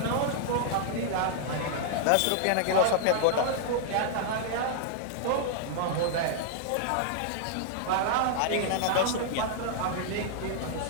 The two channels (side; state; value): both; different; correlation -0.01